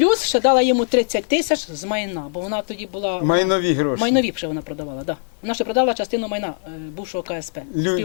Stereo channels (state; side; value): silent; right; digital silence